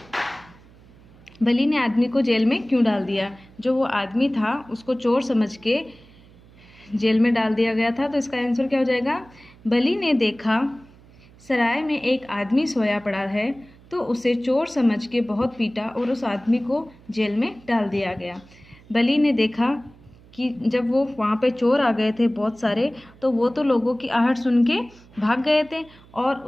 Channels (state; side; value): noise; right; hum, 25 dB below the sound